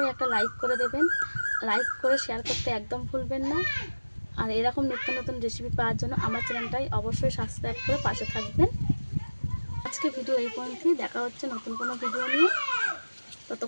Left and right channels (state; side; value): inverted; both; correlation -1.00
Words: একটা লাইক করে দেবেন। লাইক করে শেয়ার করতে একদম ভুলবেন না। আর এরকম নিত্য নতুন রেসিপি পাওয়ার জন্য আমার চ্যানেলটাই অবশ্যই সাবস্ক্রাইব করে পাশে থাকবেন। আজকে ভিডিও এই পর্যন্তই। দেখা হচ্ছে নতুন কোনো ভিডিও নিয়ে।